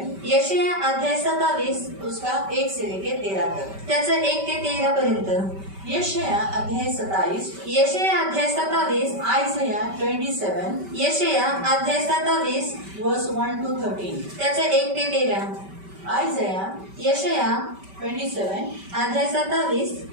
यशाया अध्याय 27 उसका 1 से लेके 13 तक. त्याचं 1 ते 13 पर्यंत. यशाया अध्याय 27. यशाया अध्याय 27. आयज़ाया 27. यशाया अध्याय 27 वर्स 1 to 13. त्याचं 1 ते 13. आयज़ाया यशाया 27 अध्याय 27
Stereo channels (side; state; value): left; late; 5.2 ms